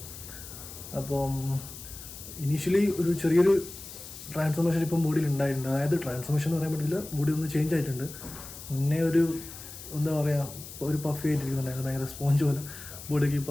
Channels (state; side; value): noise; left; hiss, 13 dB below the sound